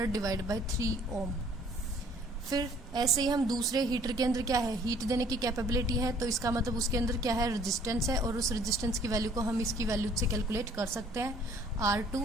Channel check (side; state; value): both; normal; correlation 0.58